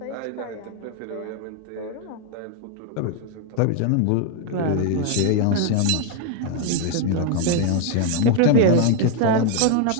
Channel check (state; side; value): different; both; correlation 0.00